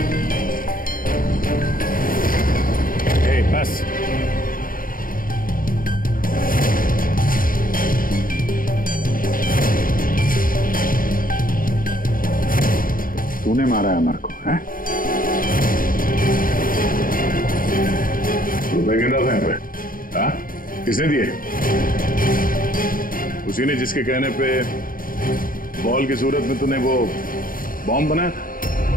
बस तूने मारा है अमर को, हैं? रुपए गिन रहा था यहाँ पे? हाँ? किसने दिए? उसी ने जिसके कहने पे बॉल की सूरत में तूने वो बॉम्ब बनाया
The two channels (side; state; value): right; late; 0.41 ms